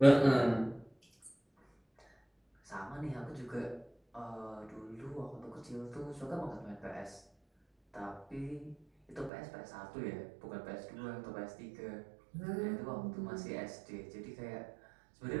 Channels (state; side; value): drops out; left; at 9.3 s